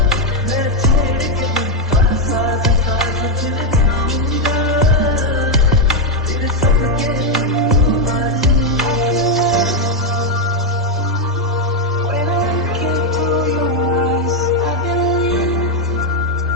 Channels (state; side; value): normal; both; correlation 0.03